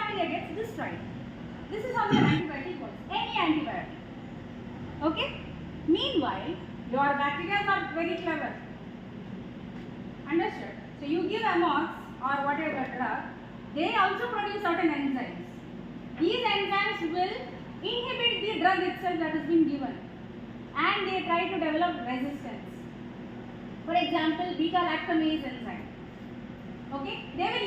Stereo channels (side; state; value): both; identical; correlation 1.00